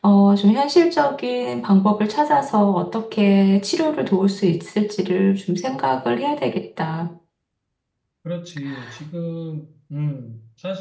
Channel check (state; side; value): identical; both; correlation 1.00